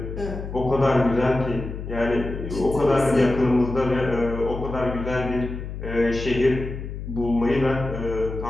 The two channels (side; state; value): left; noise; hum, 8 dB below the sound